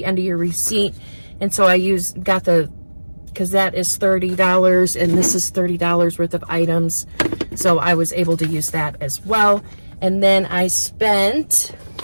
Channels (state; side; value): inverted; both; correlation -1.00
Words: end of your receipt. And so I because that is $30 and this is $30 worth of items. So I was able to use that as well. And then I spent,